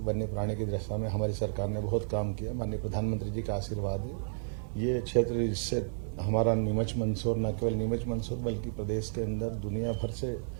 वन्य प्राणी की दशा में हमारी सरकार ने बहुत काम किया। माननीय प्रधानमंत्री जी का आशीर्वाद है। ये क्षेत्र जिससे हमारा नीमच मंदसौर, न केवल नीमच मंदसौर बल्कि प्रदेश के अंदर दुनिया भर से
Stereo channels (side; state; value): left; silent; digital silence